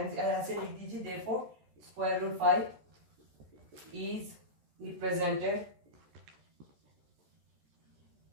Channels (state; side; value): late; left; 13 ms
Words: लिख दीजिए, therefore square root 5 is represented